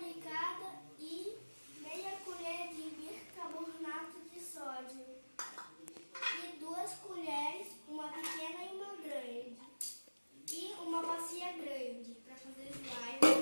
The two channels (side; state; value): both; inverted; correlation -1.00